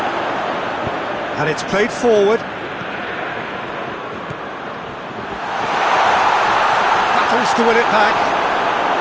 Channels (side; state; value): both; identical; correlation 1.00